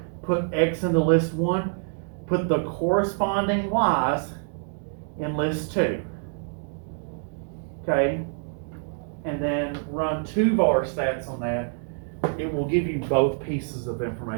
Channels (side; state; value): left; silent; digital silence